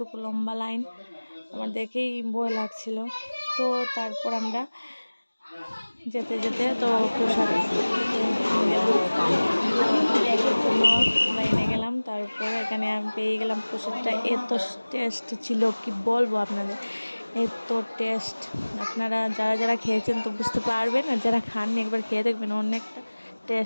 লম্বা লাইন, আমার দেখেই ভয় লাগছিল। তো তারপর আমরা যেতে যেতে তো প্রসাদ খেতে গেলাম, এর জন্য লাইনে গেলাম। তারপর এখানে আমি পেয়ে গেলাম প্রসাদটা, এত টেস্ট ছিল কি বলবো আপনাদের, এত টেস্ট। আপনারা যারা যারা খেয়েছেন তো বুঝতে পারবেন, আর যারা খাননি একবার খেয়ে দেখবেন, অনেকটা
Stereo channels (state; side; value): inverted; both; correlation -1.00